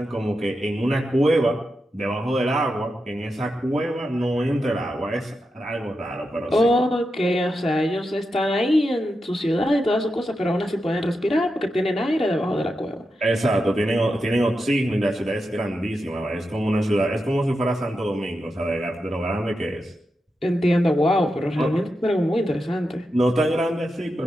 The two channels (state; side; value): normal; both; correlation 0.88